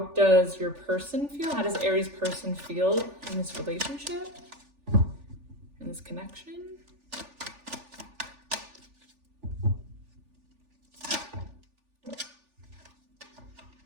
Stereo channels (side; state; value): left; late; 3.4 ms